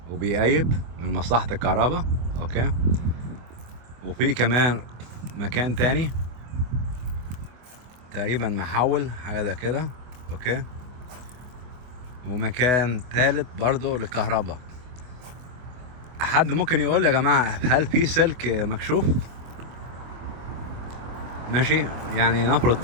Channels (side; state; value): left; late; 24 ms